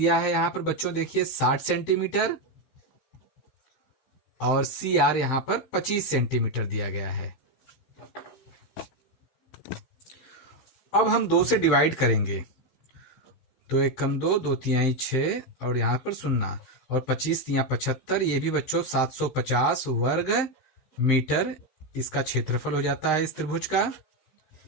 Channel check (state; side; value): late; right; 15 ms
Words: है यहां पर बच्चों देखिए 60 सेंटीमीटर और CR यहां पर 25 सेंटीमीटर दिया गया है। अब हम 2 से डिवाइड करेंगे, 2 एकम 2, 2 तिहाई 6 और यहां पर 0 और 25 तिहाई 75, ये भी बच्चों 750 वर्ग मीटर इसका क्षेत्रफल हो जाता है इस त्रिभुज का।